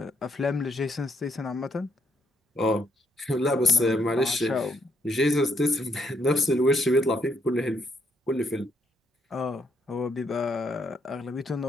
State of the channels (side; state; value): both; normal; correlation 0.73